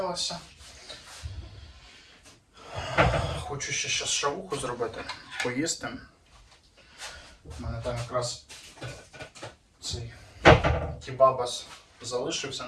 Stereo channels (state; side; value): identical; both; correlation 1.00